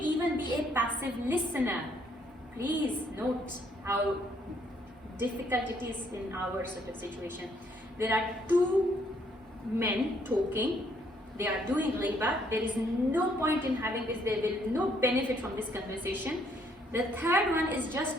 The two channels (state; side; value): normal; both; correlation 0.68